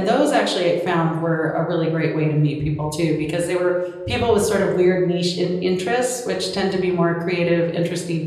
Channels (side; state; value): both; identical; correlation 1.00